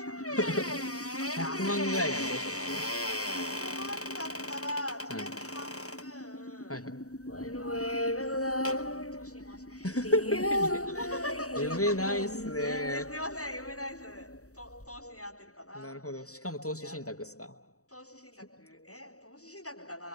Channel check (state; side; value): late; right; 0.65 ms